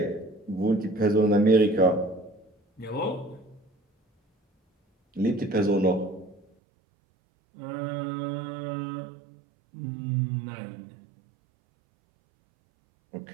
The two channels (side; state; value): left; drops out; at 6.5 s